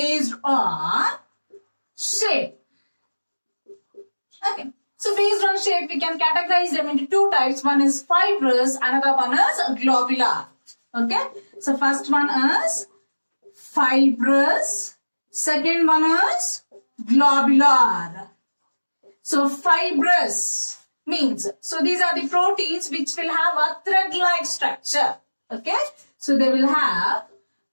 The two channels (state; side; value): inverted; both; correlation -1.00